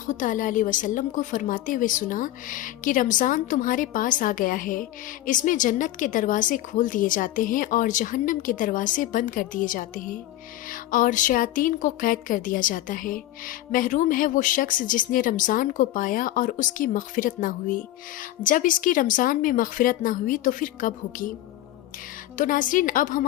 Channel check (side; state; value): right; quieter; 14.7 dB